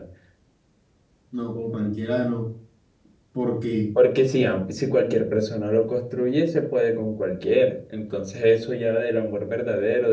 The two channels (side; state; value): both; identical; correlation 1.00